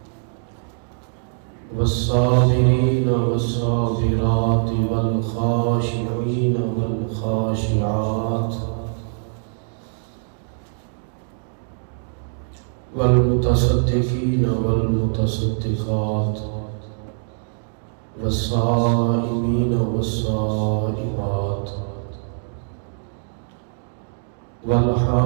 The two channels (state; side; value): silent; left; digital silence